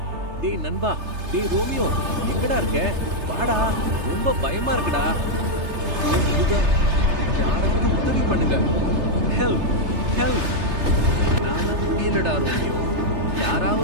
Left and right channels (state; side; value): late; left; 3.3 ms